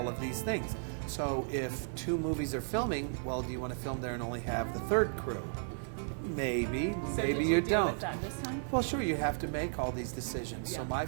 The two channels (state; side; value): silent; left; 55 dB below the other